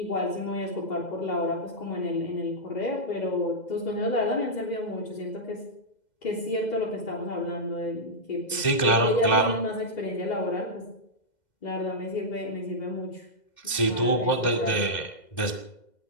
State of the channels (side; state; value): right; late; 2.0 ms